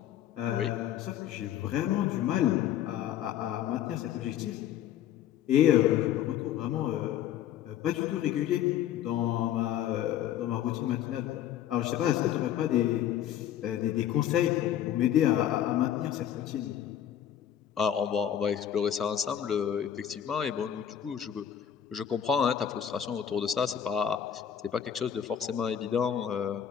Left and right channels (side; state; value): right; quieter; 10.1 dB